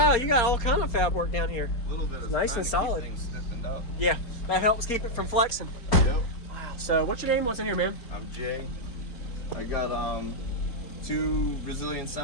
you got all kind of fab work down here. A little bit of nice and solid. Things stiffened up. Yeah, that helps keep it from flexing. Yep. Wow. So what's your name? What's in here, man? I'm Jay. I got 2 Resilient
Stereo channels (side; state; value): right; late; 4.3 ms